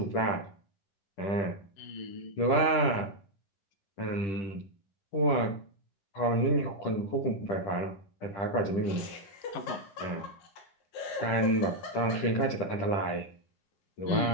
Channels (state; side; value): late; right; 10 ms